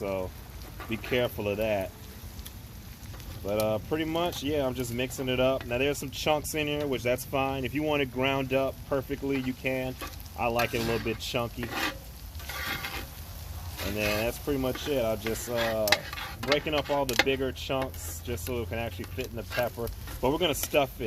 be careful of that. But pretty much, yeah, I'm just mixing it up. Now there's some chunks in here, which that's fine. If you want it ground up perfectly, you can. I like it a little bit chunky. And then that's pretty much it. I'll just breaking up all the bigger chunks just so it can actually fit in the pepper. But we're gonna stuff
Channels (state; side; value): identical; both; correlation 1.00